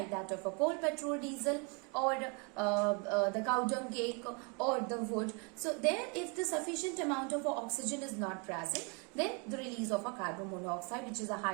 that of a coal, petrol, diesel, or the cow dung cake, or the wood. So there, if the sufficient amount of oxygen is not present, then the release of a carbon monoxide, which is a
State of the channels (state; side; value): quieter; left; 33.7 dB